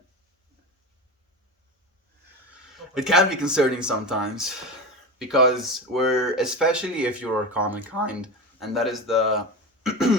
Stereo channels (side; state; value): both; normal; correlation 0.24